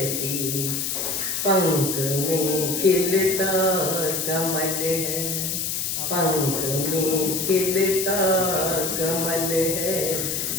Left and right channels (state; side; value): noise; left; hiss, 1 dB below the sound